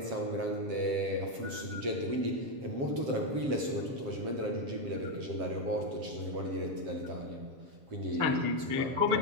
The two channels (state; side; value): late; left; 7.5 ms